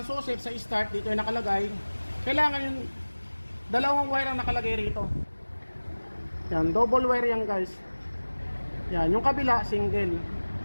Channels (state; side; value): inverted; both; correlation -1.00